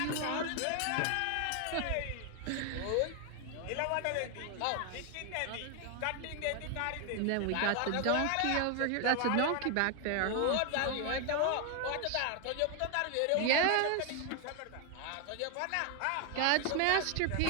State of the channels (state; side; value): different; both; correlation 0.01